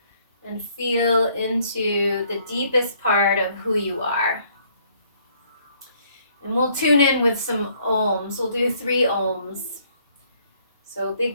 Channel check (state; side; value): inverted; both; correlation -0.65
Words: and feel into the deepest part of who you are. And we'll tune in with some ohms. We'll do 3 ohms. So